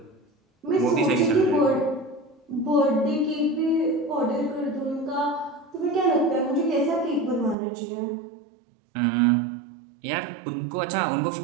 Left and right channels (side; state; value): left; drops out; at 7.6 s